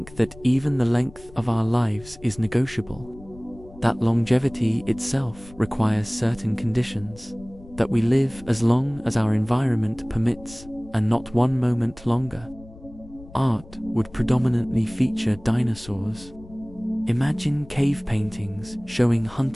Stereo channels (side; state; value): left; noise; rumble, 20 dB below the sound